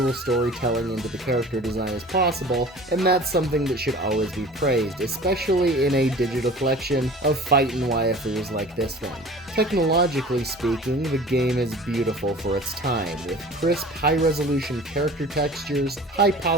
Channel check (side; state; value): both; normal; correlation 0.42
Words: storytelling into the character design as possible, and that's something that should always be praised, especially in a digital collection of fightin' waifus like this one. Technologically speaking, the game is beautiful for its time, with crisp, high-resolution character textures, high